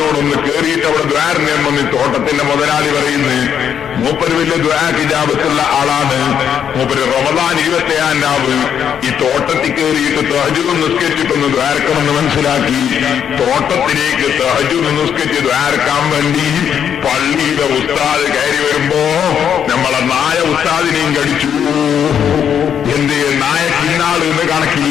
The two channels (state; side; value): quieter; right; 8.5 dB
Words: കേറിയിട്ട് അവിടെ ദ്വാരനെ വന്ന് തോട്ടത്തിന്റെ മുതലാളി പറയുന്നു, മൂപ്പര് വലിയ ദ്വാക്കിജാബത്തുള്ള ആളാണ്. മൂപ്പര് റമദാൻ 27-ാം രാവ് ഈ തോട്ടത്തിൽ കയറിയിട്ട് തഹജ്ജുദ് നിസ്കരിച്ചിട്ടൊന്ന് ദ്വാരക്കണമെന്ന് മനസ്സിലാക്കി തോട്ടത്തിലേക്ക് തഹജ്ജുദ് നിസ്കരിച്ച് ദ്വാരക്കാൻ വേണ്ടി പള്ളിയിലെ ഉസ്താദ് കയറി വരുമ്പോ നമ്മളെ നായ ഉസ്താദിനെയും കടിച്ചു. എന്ത് നായ കിന്നാള് എന്ന്